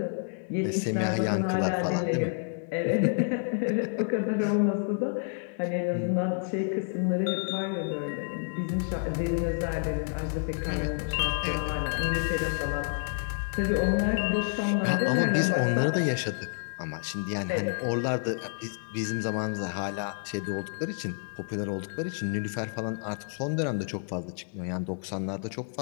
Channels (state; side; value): silent; right; 56 dB below the other